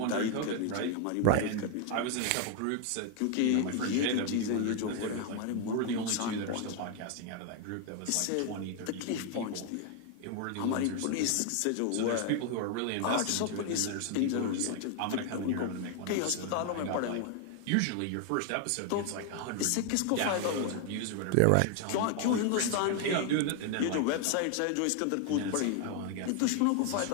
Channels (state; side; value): different; both; correlation 0.00